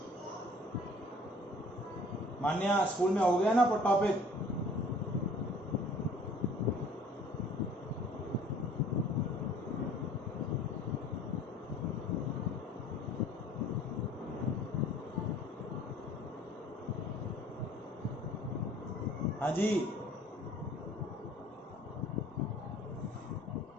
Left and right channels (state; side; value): normal; both; correlation 0.52